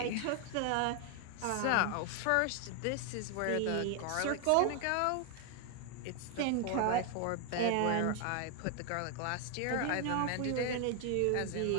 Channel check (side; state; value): both; different; correlation 0.01